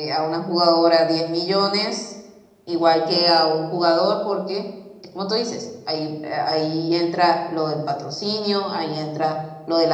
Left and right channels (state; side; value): identical; both; correlation 1.00